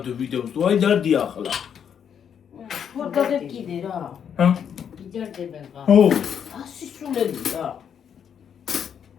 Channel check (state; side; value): quieter; right; 8.1 dB